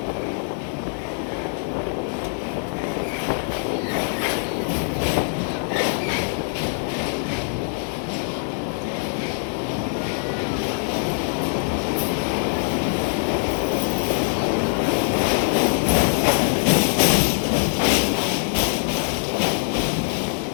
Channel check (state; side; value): silent; right; 63 dB below the other